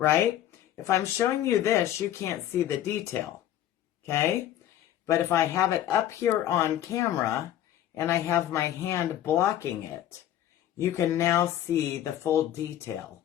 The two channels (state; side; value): quieter; right; 11.8 dB